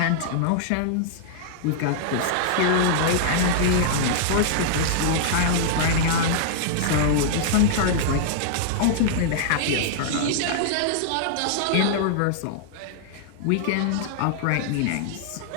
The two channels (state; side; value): different; both; correlation -0.02